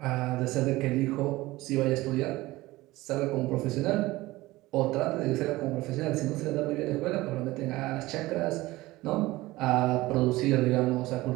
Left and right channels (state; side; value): quieter; left; 19.0 dB